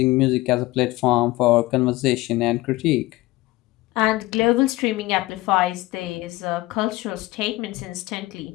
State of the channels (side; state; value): right; quieter; 19.4 dB